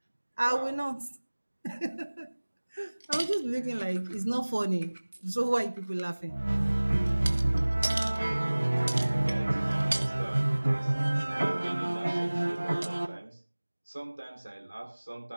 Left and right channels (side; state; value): both; inverted; correlation -1.00